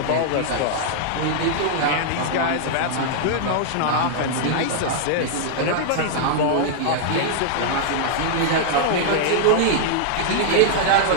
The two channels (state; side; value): different; both; correlation -0.01